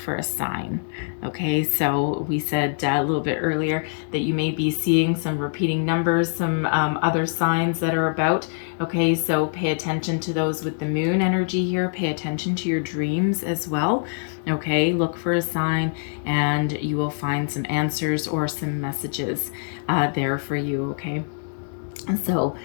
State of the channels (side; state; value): right; silent; 63 dB below the other